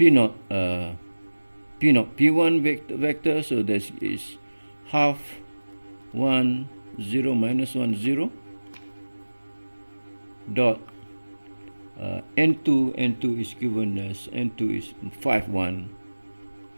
p1 vector, so this is half 1 0 minus 1 0 dot n2 is given as n2 is 5 1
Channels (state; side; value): inverted; both; correlation -1.00